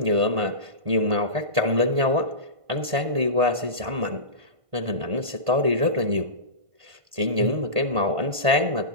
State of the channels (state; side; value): late; left; 1.5 ms